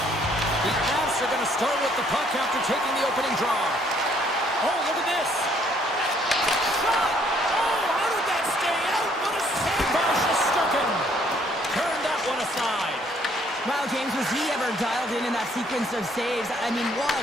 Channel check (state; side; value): normal; both; correlation 0.65